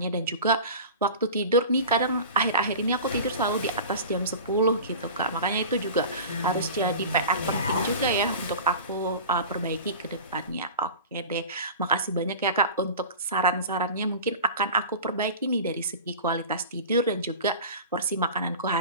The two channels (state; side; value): inverted; both; correlation -0.35